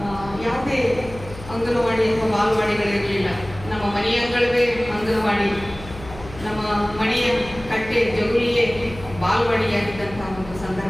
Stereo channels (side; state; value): left; noise; hum, 15 dB below the sound